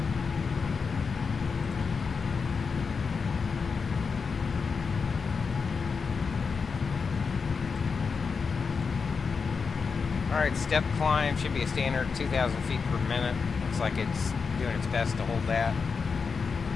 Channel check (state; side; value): quieter; right; 5.3 dB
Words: Alright, step climb should be a standard 2,000 feet per minute. Looks like it's doing its best to hold that.